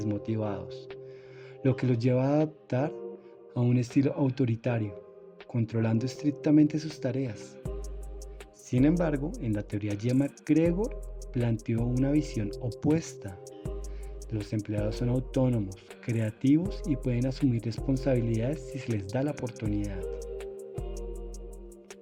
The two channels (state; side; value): identical; both; correlation 1.00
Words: lo que los lleva a adaptar a un estilo autoritario, controlando estrictamente sus tareas. Sin embargo, en la teoría Y, MacGregor planteó una visión opuesta. Los empleados son autónomos, creativos y pueden asumir responsabilidades si se les da la oportunidad.